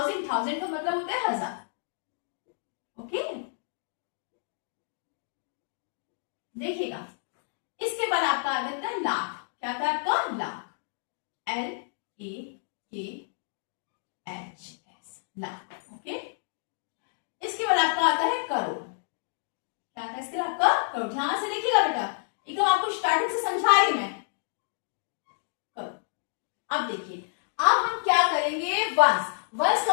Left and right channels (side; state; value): right; silent; digital silence